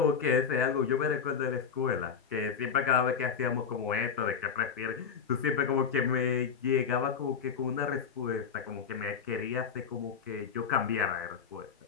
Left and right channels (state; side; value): quieter; right; 6.7 dB